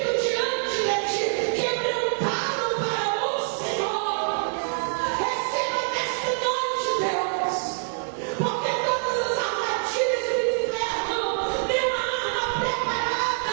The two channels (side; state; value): left; silent; 61 dB below the other